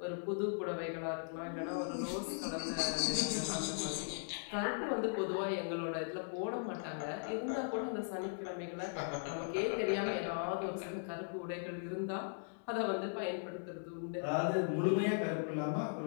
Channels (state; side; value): silent; right; digital silence